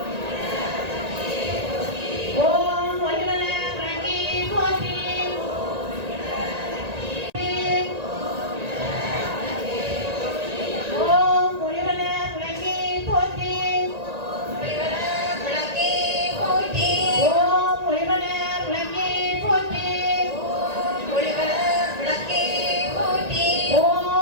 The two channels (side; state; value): left; late; 1.9 ms